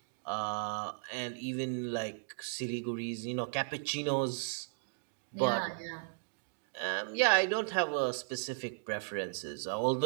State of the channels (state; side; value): silent; left; digital silence